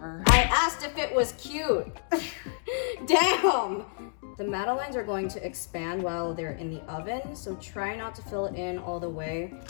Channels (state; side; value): silent; right; digital silence